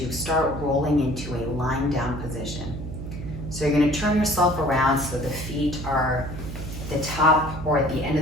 start rolling into a lying down position. So you're gonna turn yourself around so the feet are at the top or at the end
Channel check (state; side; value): noise; right; hum, 8 dB below the sound